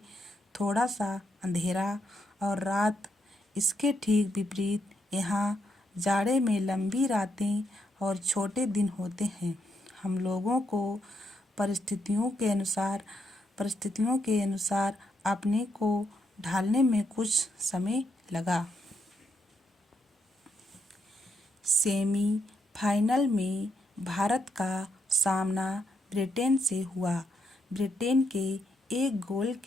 थोड़ा सा अंधेरा और रात। इसके ठीक विपरीत यहाँ जाड़े में लंबी रातें और छोटे दिन होते हैं। हम लोगों को परिस्थितियों के अनुसार अपने को ढालने में कुछ समय लगा। सेमीफाइनल में भारत का सामना ब्रिटेन से हुआ। ब्रिटेन के एक गोल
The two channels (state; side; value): normal; both; correlation 0.79